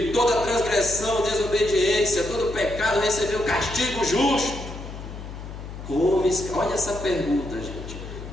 toda transgressão, desobediência, todo pecado recebeu castigo justo, olha essa pergunta, gente:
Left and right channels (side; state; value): left; noise; hum, 11 dB below the sound